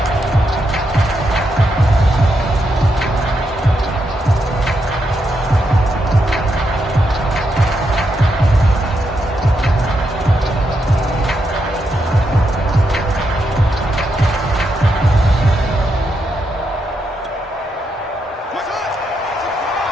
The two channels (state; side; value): normal; both; correlation 0.82